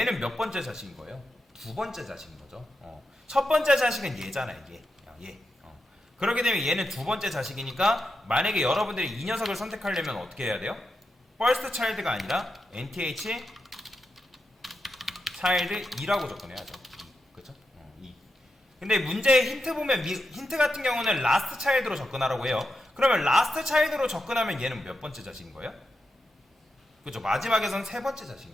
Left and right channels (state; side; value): normal; both; correlation 0.87